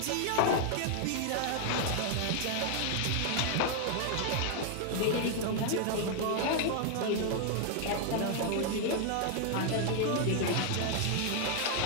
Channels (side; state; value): both; different; correlation 0.00